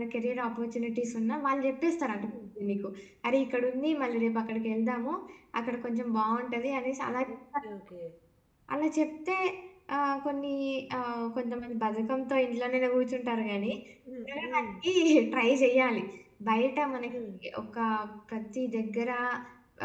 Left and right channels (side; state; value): both; identical; correlation 1.00